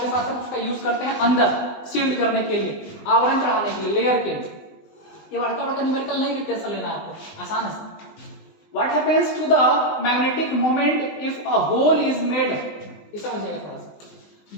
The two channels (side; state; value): right; late; 20 ms